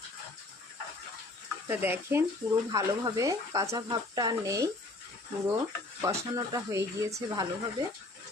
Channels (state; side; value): quieter; right; 3.0 dB